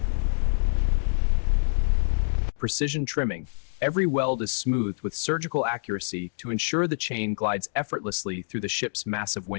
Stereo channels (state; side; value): silent; right; digital silence